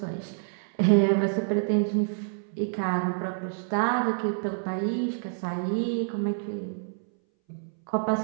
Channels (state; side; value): silent; left; 60 dB below the other